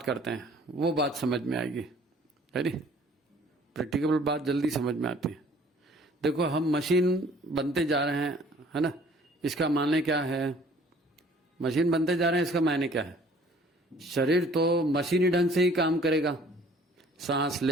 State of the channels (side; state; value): both; normal; correlation 0.55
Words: करते हैं, वो बात समझ में आएगी। है नी? प्रैक्टिकल बात जल्दी समझ में आती है। देखो, हम मशीन बनते जा रहे हैं, है ना? इसका माने क्या है? मशीन बनते जा रहे हैं, इसका मायने क्या है? शरीर तो मशीनी ढंग से ही काम करेगा, सांस